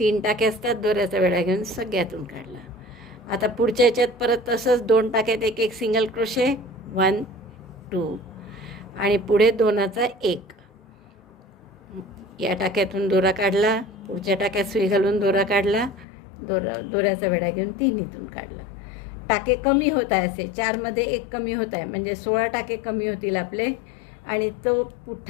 टाके असतात, दोऱ्याचा वेढा घेऊन सगळ्यातून काढला. आता पुढच्या ह्याच्यात परत तसंच 2 टाक्यात एक एक सिंगल क्रोशे 1, 2 आणि पुढे दोनाचा एक. या टाक्यातून दोरा काढला, पुढच्या टाक्यात सुई घालून दोरा काढला, दोऱ्याचा वेढा घेऊन 3हीतून काढला. टाके कमी होत आहे, असे 4मध्ये एक कमी होत आहे, म्हणजे 16 टाके कमी होतील आपले. आणि तो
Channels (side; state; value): right; drops out; at 16.1 s